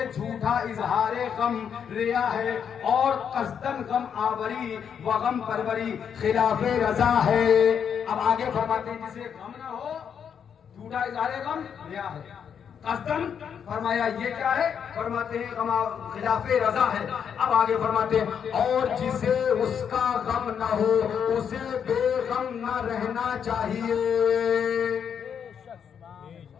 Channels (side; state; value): right; quieter; 7.7 dB